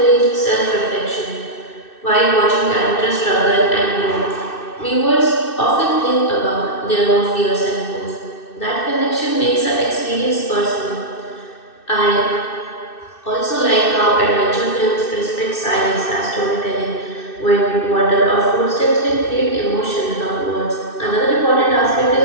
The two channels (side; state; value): right; late; 2.6 ms